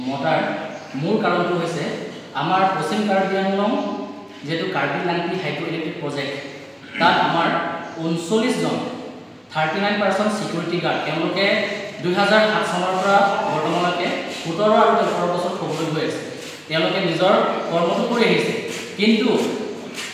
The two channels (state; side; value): identical; both; correlation 1.00